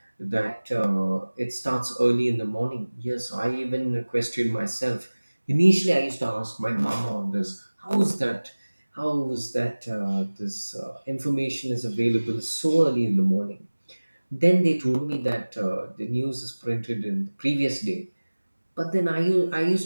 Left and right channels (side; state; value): both; inverted; correlation -1.00